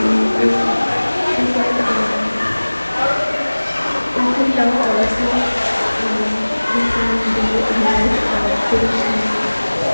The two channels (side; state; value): both; inverted; correlation -1.00